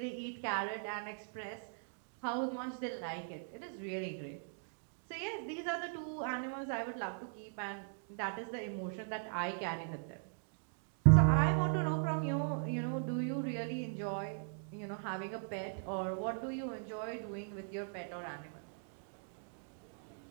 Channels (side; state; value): left; silent; digital silence